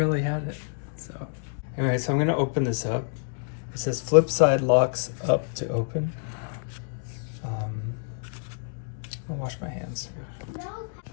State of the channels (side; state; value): right; silent; digital silence